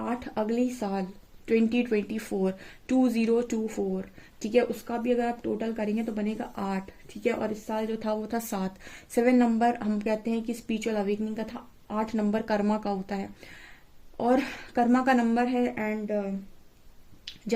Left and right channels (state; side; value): identical; both; correlation 1.00